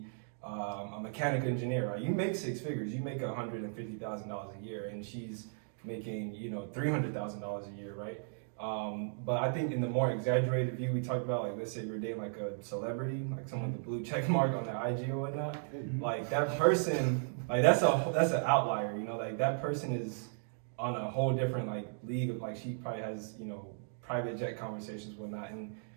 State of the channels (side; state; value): left; silent; digital silence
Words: a mechanical engineer, right? You make six figures. You make $150,000 a year, and she's making $300,000 a year, right? But I think in the more exaggerated view, we talked about like let's say you're dating like a celebrity, like someone with a blue check mark on their IG or whatnot. Like that person, like that's an outlier, like that person is on a whole different like league of like she probably has, you know, private jet conversations, whatnot, and